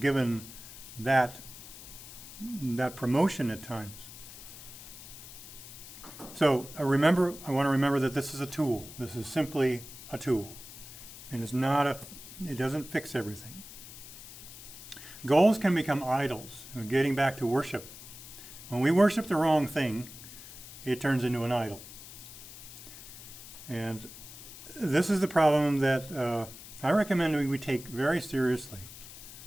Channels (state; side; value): noise; left; hiss, 15 dB below the sound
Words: that promotion at times. So I want to remember that this is a tool. This is simply a tool. And it doesn't fix everything. Goals can become idols. Getting back to worship. When we worship the wrong thing, it turns into an idol. And this is the problem that I recommend we take very seriously.